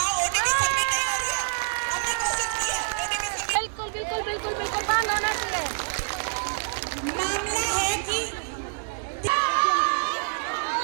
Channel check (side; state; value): left; silent; 61 dB below the other